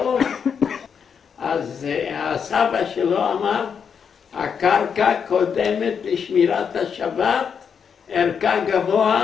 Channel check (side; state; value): right; quieter; 6.9 dB